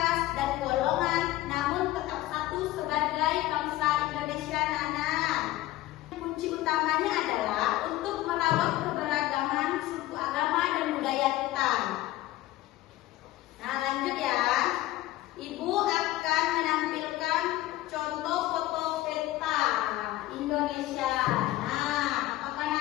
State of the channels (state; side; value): quieter; right; 16.3 dB